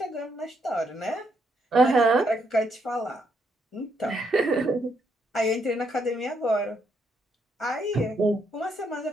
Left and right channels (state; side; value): normal; both; correlation 0.76